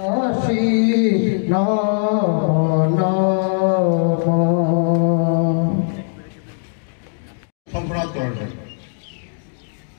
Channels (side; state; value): right; silent; 64 dB below the other